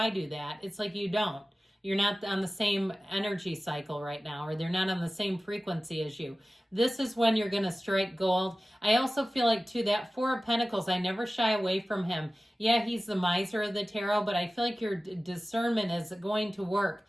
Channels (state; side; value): normal; both; correlation 0.96